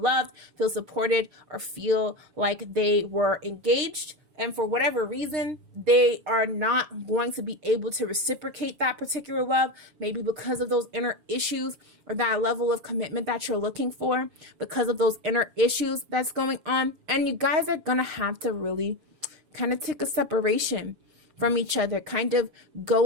feel supported, or feel like they were engaged. And for whatever reason, they are not going to be able to reciprocate that particular love, maybe because of those inner issues or that level of commitment that you're looking for, because of those inner issues that's going on. And you guys are going to have to really kind of take a separation from each other, kind of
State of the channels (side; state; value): left; late; 6.6 ms